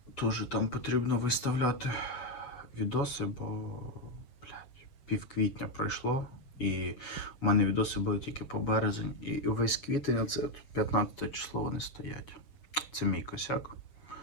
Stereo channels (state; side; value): late; right; 7.2 ms